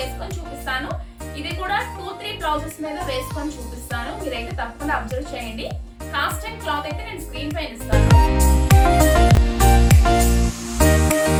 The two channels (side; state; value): both; identical; correlation 1.00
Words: వేసుకొని చూపిస్తాను. ఇది కూడా 2-3 బ్లౌజెస్ మీద వేసుకొని చూపిస్తాను, మీరైతే తప్పకుండా అబ్జర్వ్ చేయండి. కాస్ట్ అండ్ క్లాత్ అయితే నేను స్క్రీన్ పైన ఇస్తాను.